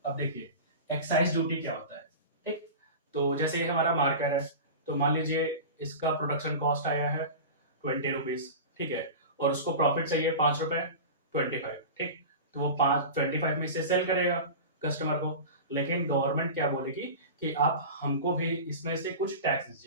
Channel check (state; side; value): inverted; both; correlation -0.30